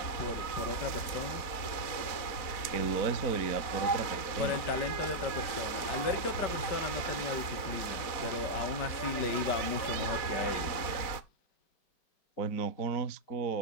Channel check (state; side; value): late; right; 4.1 ms